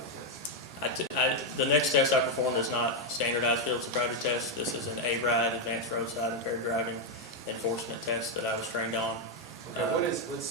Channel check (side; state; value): both; normal; correlation 0.01